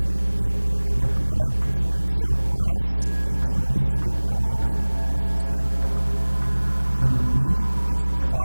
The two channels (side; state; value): both; inverted; correlation -1.00